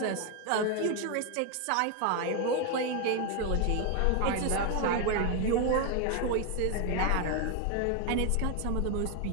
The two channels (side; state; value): both; different; correlation 0.01